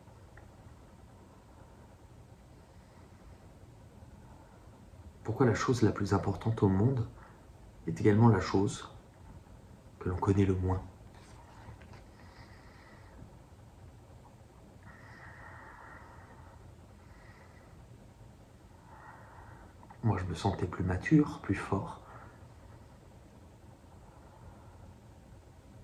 Pourquoi la chose la plus importante au monde est également la chose que l'on connaît le moins. Moi, je me sentais plus mature, plus fort.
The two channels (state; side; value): identical; both; correlation 1.00